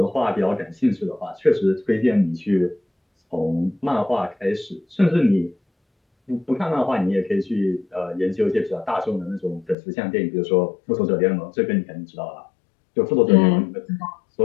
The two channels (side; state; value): right; drops out; at 9.8 s